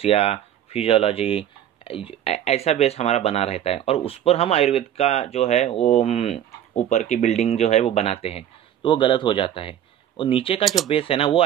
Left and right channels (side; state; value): left; quieter; 10.7 dB